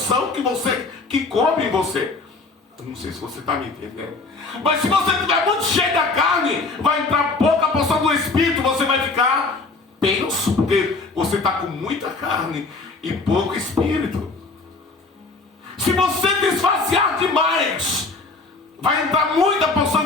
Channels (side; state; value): right; quieter; 3.7 dB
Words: que coube em você. Eu não sei se você está me entendendo. Mas se você estiver muito cheio da carne, vai entrar pouca porção do Espírito, você vai ficar tenso, porque você está com muita carne e pouco Espírito. Se você desvaziar demais, vai entrar muita porção